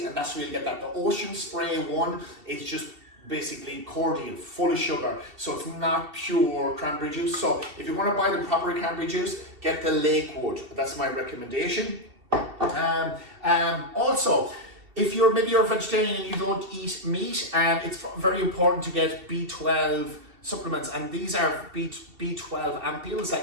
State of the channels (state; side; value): late; left; 2.7 ms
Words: and that's where you get that. The Ocean Spray one is just basically cordial, full of sugar. So it's not pure cranberry juice. So if you want to buy the proper cranberry juice, get the Lakewood. That's my recommendation. Also, if maybe you're a vegetarian and you don't eat meat, it's very important to get B12 supplements, and these are B12 ampules